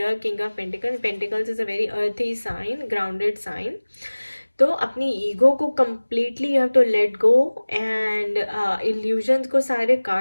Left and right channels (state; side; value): inverted; both; correlation -1.00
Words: king of pentacles is a very earthy sign, grounded sign. तो अपनी ईगो को completely you have to let go, and illusions को सारे